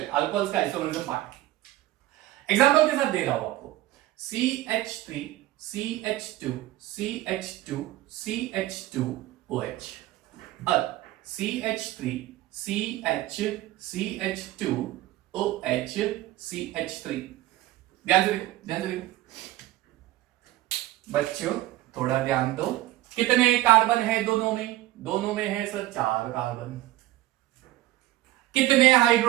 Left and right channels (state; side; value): quieter; left; 16.1 dB